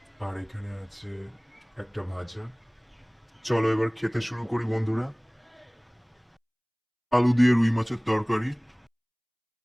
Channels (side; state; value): both; identical; correlation 1.00